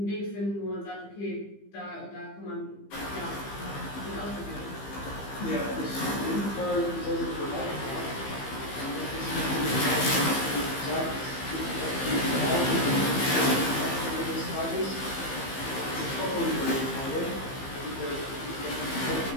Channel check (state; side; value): late; right; 15 ms